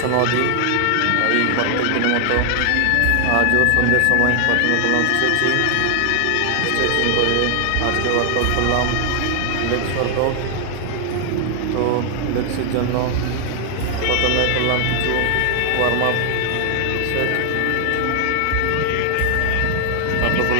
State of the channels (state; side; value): different; both; correlation 0.00